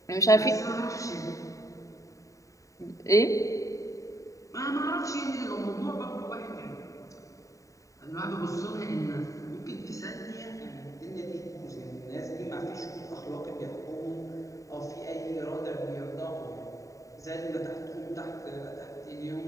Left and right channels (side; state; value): right; late; 0.16 ms